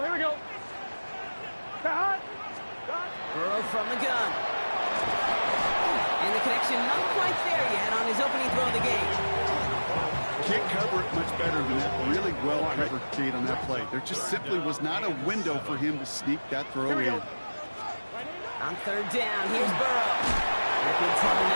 we go. Cut. Burrow from the gun. And the connection not quite there yet on his opening throw of the game. Can't cover it much better than that. Really well covered, Kate, on that play. There just simply was not a window for him to sneak that throw in. On third down, here's Burrow. Good trouble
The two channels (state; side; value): inverted; both; correlation -1.00